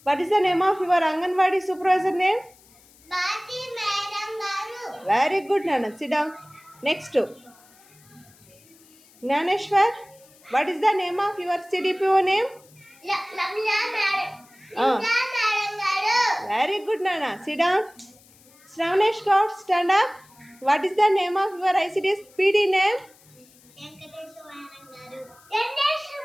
what is the name of your anganwadi supervisor name? Bati, madam garu. Very good నాన్న, sit down. Next Gnaneshwar, what is the name of your CDPO name? Lamla, madam. Ah. Lamla, madam garu. Very good నాన్న, sit down. Shravanesh Goud, stand up. What is the name of your ICDS PD name? Venkateswara, madam garu.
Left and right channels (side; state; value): left; noise; hiss, 27 dB below the sound